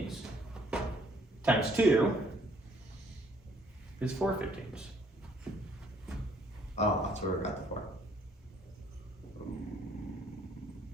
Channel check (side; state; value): both; normal; correlation 0.63